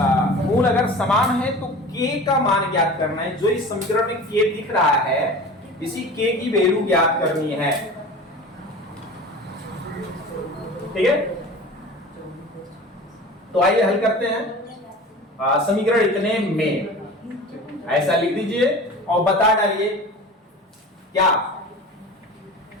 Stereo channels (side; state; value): both; normal; correlation 0.37